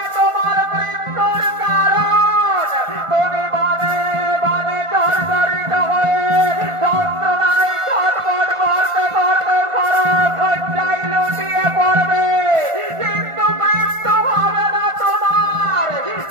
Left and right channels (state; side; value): late; left; 1.5 ms